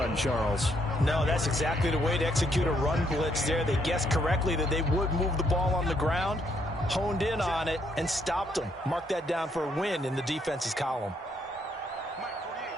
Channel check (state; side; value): normal; both; correlation 0.72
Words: Charles. No, that's exactly the way to execute a run blitz there. They guessed correctly that they would move the ball on the ground, honed in on it, and stopped them. Mark that down for a win in the defense's column. Mike 48,